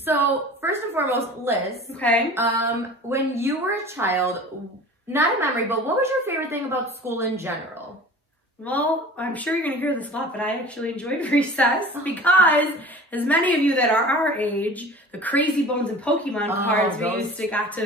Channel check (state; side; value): normal; both; correlation 0.41